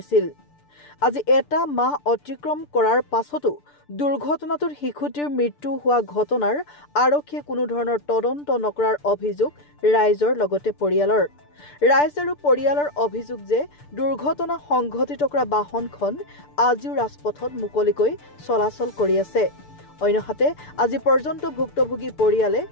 আজি এটা মাহ অতিক্ৰম কৰাৰ পাছতো দুৰ্ঘটনাটোত শিশুটিৰ মৃত্যু হোৱা ঘটনাৰ আৰক্ষীয়ে কোনো ধৰণৰ তদন্ত নকৰাৰ অভিযোগ ৰাইজৰ লগতে পৰিয়ালৰ। ৰাইজ আৰু পৰিয়ালৰ অভিযোগ যে দুৰ্ঘটনা সংঘটিত কৰা বাহনখন আজিও ৰাজপথত মুকলিকৈ চলাচল কৰি আছে। অন্যহাতে আজি পৰ্যন্ত ভুক্তভোগী পৰিয়ালে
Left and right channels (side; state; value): right; late; 6.8 ms